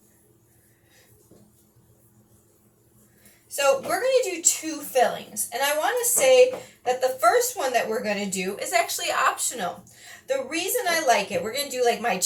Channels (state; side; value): identical; both; correlation 1.00